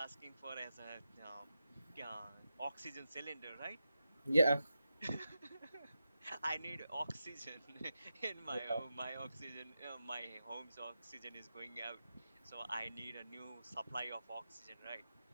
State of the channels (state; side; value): inverted; both; correlation -0.89